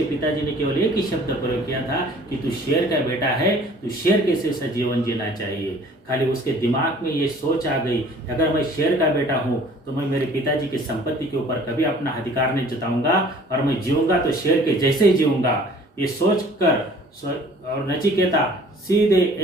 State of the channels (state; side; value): normal; both; correlation 0.51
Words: पिताजी ने केवल एक ही शब्द प्रयोग किया था कि तू शेर का बेटा है, तू शेर के जैसा जीवन जीना चाहिए। खाली उसके दिमाग में ये सोच आ गई, अगर मैं शेर का बेटा हूँ तो मैं मेरे पिताजी की संपत्ति के ऊपर कभी अपना अधिकार नहीं जताऊंगा और मैं जीऊंगा तो शेर के जैसे ही जीऊंगा। ये सोच कर और नचिकेता सीधे